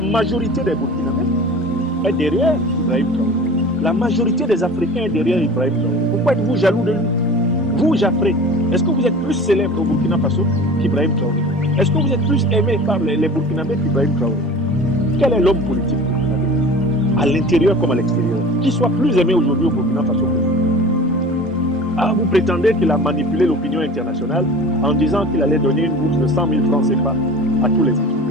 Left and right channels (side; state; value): both; normal; correlation 0.39